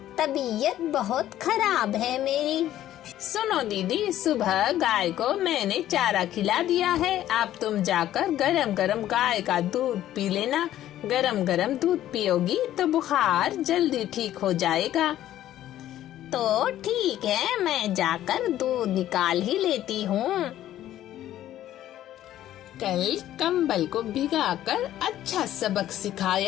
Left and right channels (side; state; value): right; quieter; 12.8 dB